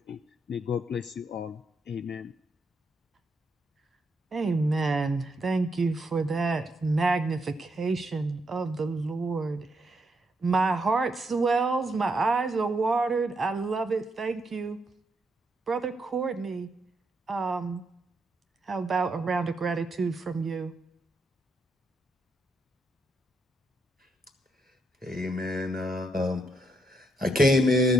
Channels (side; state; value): both; normal; correlation 0.78